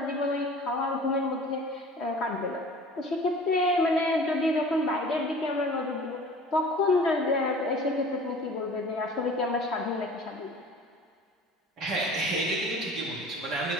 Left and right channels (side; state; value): both; normal; correlation 0.43